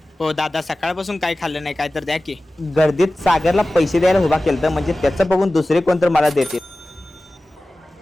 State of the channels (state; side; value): normal; both; correlation 0.96